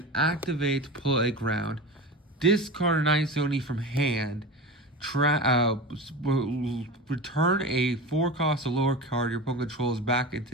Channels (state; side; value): normal; both; correlation 0.28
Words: activate Playground, discard an Ice Oni from hand, return a 4 cost or lower card your opponent controls back